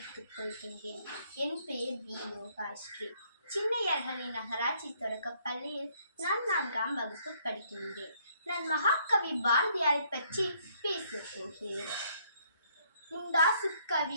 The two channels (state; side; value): inverted; both; correlation -0.67